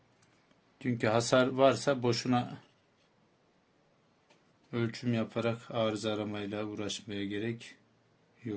Çünkü hasar varsa boşuna ölçüm yaparak arıza aramayla uğraşmaya gerek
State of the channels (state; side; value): identical; both; correlation 1.00